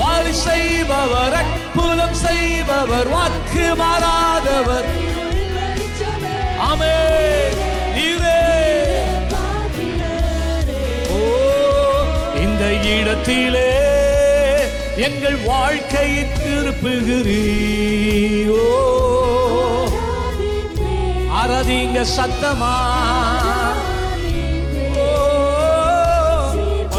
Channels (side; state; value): both; identical; correlation 1.00